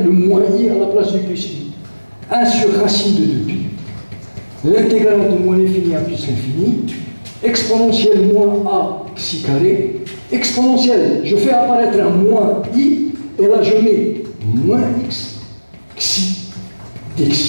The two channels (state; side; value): inverted; both; correlation -1.00